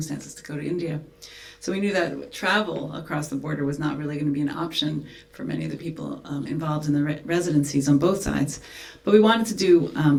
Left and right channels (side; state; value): both; identical; correlation 1.00